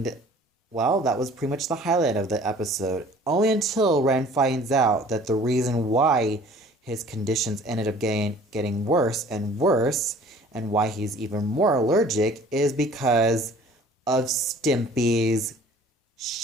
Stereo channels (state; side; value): normal; both; correlation 0.50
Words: well, that was pretty much the highlight of the episode. Only until Ren finds out that the reason why his conditions ended up getting worse, and why he's even more allergic is because of Stimpy's